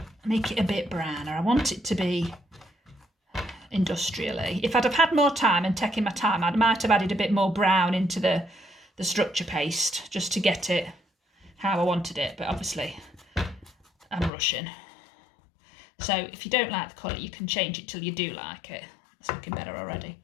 make it a bit browner. I want it to be industrially. If I'd have had more time and taken my time, I might have added a bit more brown into the structure paste just to get it how I wanted it. But obviously I'm rushing. So if you don't like the colour, you can change it till you do like it. It's looking better already.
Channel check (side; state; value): right; drops out; at 14.3 s